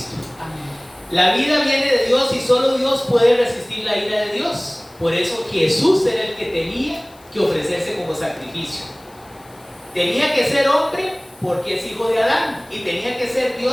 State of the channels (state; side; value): noise; left; hiss, 27 dB below the sound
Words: La vida viene de Dios y solo Dios puede resistir la ira de Dios. Por eso Jesús era el que tenía que ofrecerse como sacrificio. Tenía que ser hombre porque es hijo de Adán y tenía que ser